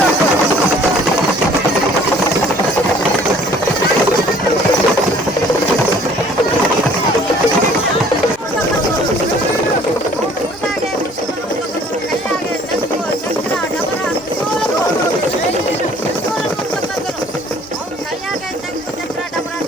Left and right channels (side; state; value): both; normal; correlation 0.55